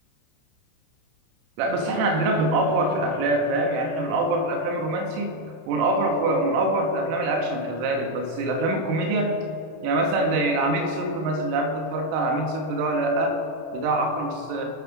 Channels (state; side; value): late; left; 31 ms